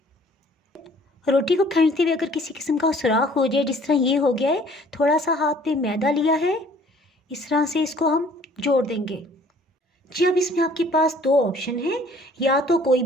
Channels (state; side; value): normal; both; correlation 0.55